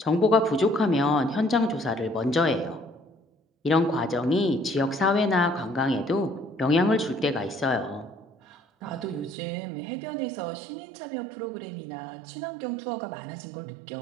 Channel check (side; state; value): left; drops out; at 9.3 s